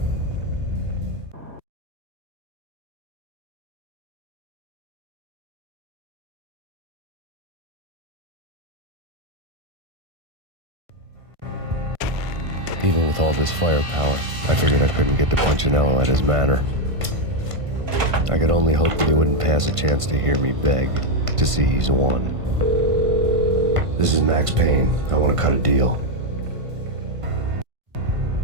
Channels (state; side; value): late; left; 1.5 ms